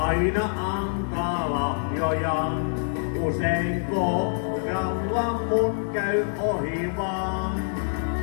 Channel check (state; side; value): silent; right; digital silence